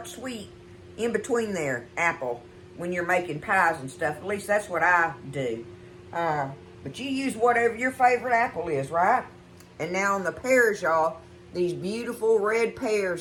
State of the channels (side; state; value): both; identical; correlation 1.00